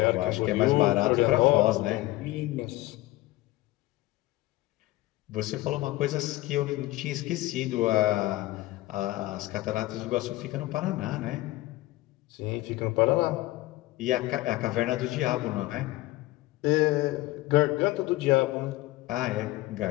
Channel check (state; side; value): quieter; right; 18.0 dB